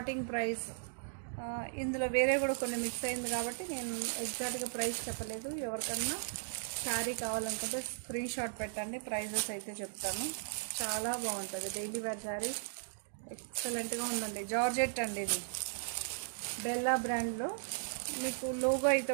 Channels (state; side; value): silent; left; digital silence